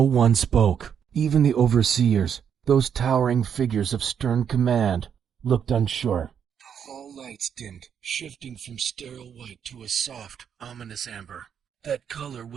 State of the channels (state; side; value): quieter; left; 8.0 dB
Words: one spoke. Even the overseers, those towering figures of stern command, looked unsure. The hall lights dimmed, shifting from sterile white to a soft, ominous amber. That color